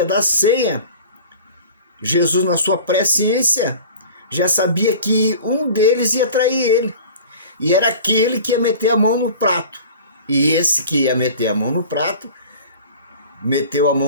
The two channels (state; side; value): inverted; both; correlation -0.41